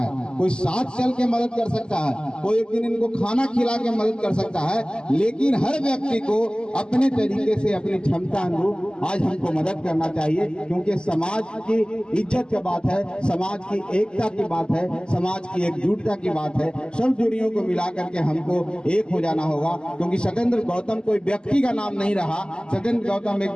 कोई साथ चल के मदद कर सकता है, कोई एक दिन इनको खाना खिला के मदद कर सकता है। लेकिन हर व्यक्ति को अपने तरीके से, अपनी क्षमता अनुरूप आज हमको मदद करना चाहिए, क्योंकि समाज की इज्जत की बात है, समाज की एकता की बात है, समाज की एकजुटता की बात है। सब दूरियों को मिला करके हमको एक हो जाना होगा, क्योंकि सत्येंद्र गौतम कोई व्यक्ति का नाम नहीं रहा, सत्येंद्र गौतम एक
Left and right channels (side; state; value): right; late; 0.048 ms